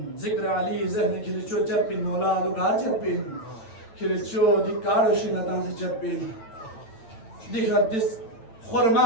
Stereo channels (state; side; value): late; right; 8.9 ms